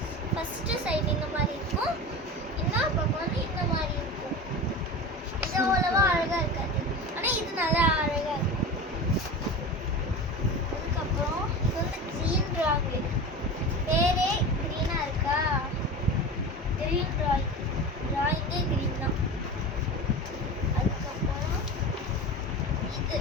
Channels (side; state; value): both; normal; correlation 0.30